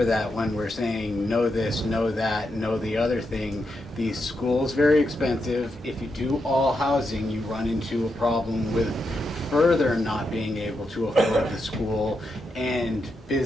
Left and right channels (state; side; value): normal; both; correlation 0.84